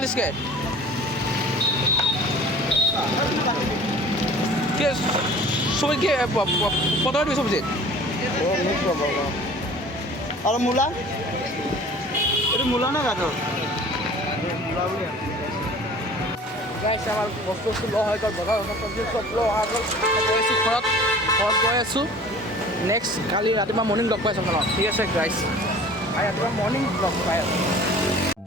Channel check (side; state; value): both; normal; correlation 0.45